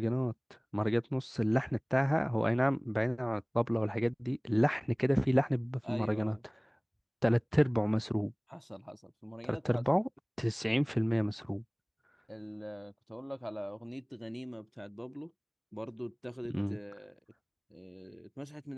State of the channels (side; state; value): both; identical; correlation 1.00